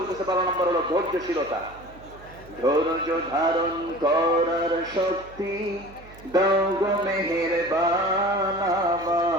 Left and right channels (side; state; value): right; noise; hum, 21 dB below the sound